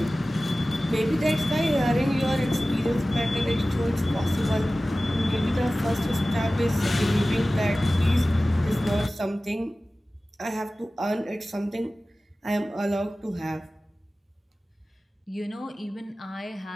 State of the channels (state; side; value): normal; both; correlation 0.96